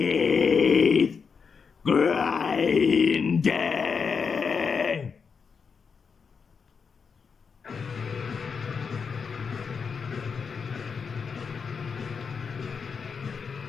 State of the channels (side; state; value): right; quieter; 5.8 dB